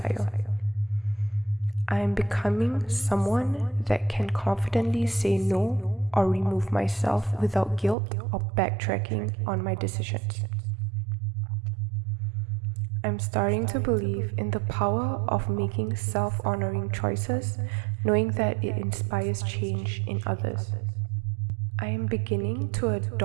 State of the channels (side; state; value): left; drops out; at 8.0 s